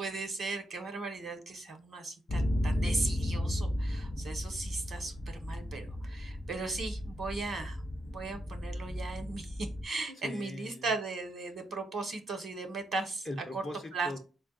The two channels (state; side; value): normal; both; correlation 0.83